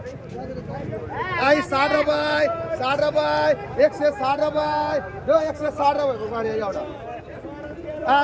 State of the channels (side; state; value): both; identical; correlation 1.00